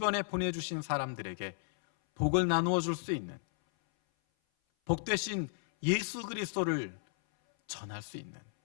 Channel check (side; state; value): right; silent; 55 dB below the other